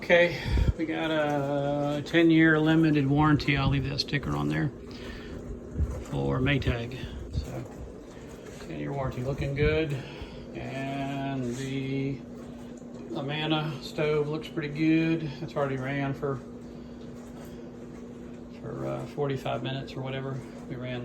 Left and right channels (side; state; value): both; identical; correlation 1.00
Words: we got a 10-year limited warranty. I'll leave that sticker on there for Maytag. So 10-year warranty, looking good. And the Amana stove looks pretty good. It's already ran for 45 minutes or whatever. We ran